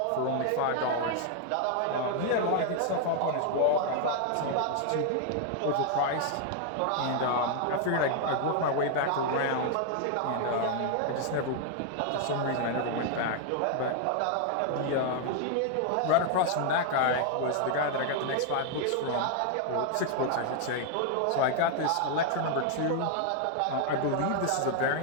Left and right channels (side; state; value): both; different; correlation 0.00